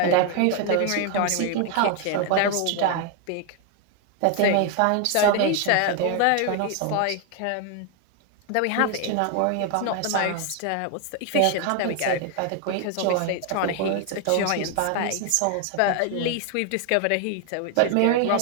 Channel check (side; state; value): both; different; correlation 0.01